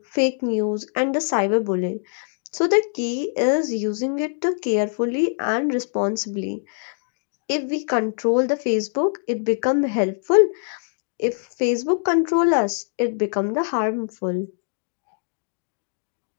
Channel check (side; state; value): right; silent; digital silence